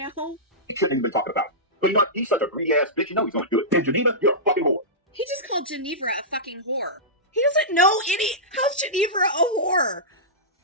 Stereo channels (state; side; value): normal; both; correlation -0.16